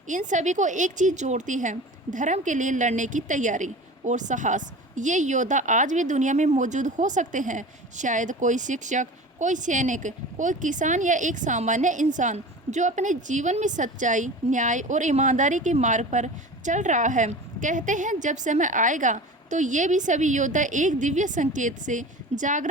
इन सभी को एक चीज जोड़ती है, धर्म के लिए लड़ने की तैयारी और साहस। ये योद्धा आज भी दुनिया में मौजूद हो सकते हैं। शायद कोई शिक्षक, कोई सैनिक, कोई किसान या एक सामान्य इंसान जो अपने जीवन में सच्चाई, न्याय और ईमानदारी के मार्ग पर चल रहा है। कहते हैं जब समय आएगा तो ये भी सभी योद्धा एक दिव्य संकेत से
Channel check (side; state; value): both; normal; correlation 0.35